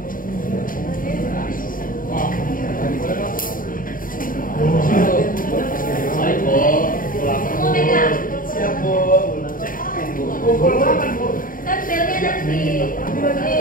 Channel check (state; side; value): late; right; 0.40 ms